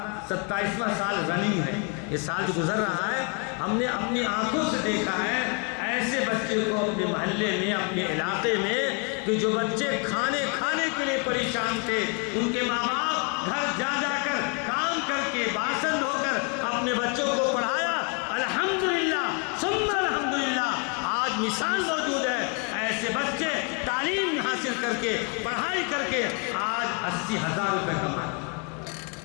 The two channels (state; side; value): quieter; right; 35.6 dB